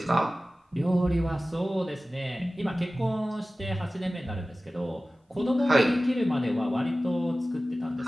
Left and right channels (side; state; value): both; normal; correlation 0.96